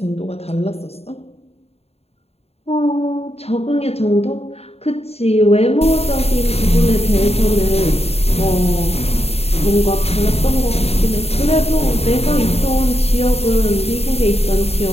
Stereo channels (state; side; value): late; right; 0.30 ms